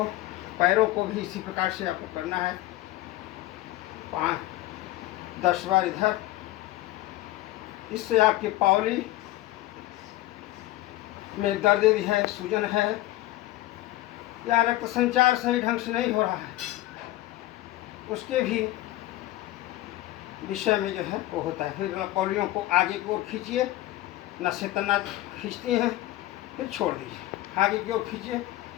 पैरों को भी इसी प्रकार से आपको करना है। 5-10 बार इधर। इससे आपकी पावली में दर्द भी है, सूजन है या रक्त संचार सही ढंग से नहीं हो रहा है, उसके भी विषय में जो है वो होता है। फिर कौलियों को आगे की ओर खींचिए, नसें तना खींचती हैं, फिर छोड़ दीजिए। आगे की ओर खींचिए,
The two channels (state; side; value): quieter; right; 16.3 dB